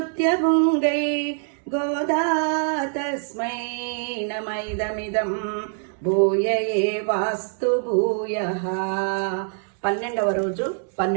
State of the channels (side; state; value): left; silent; 57 dB below the other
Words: భుంగై గోదా తస్మై నమైదమిదం భూయ ఏవాస్తు భూయః. 12వ రోజు